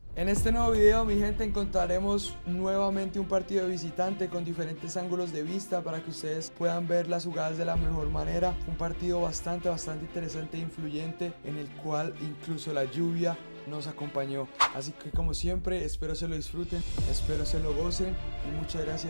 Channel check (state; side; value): inverted; both; correlation -1.00